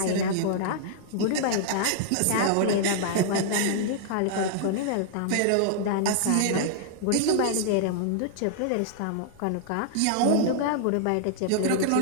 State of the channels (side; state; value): both; different; correlation -0.01